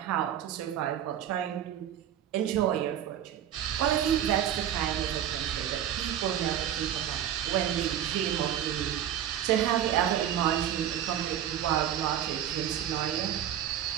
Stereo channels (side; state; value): left; quieter; 10.6 dB